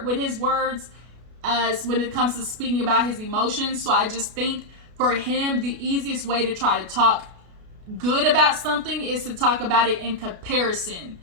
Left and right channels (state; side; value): late; left; 33 ms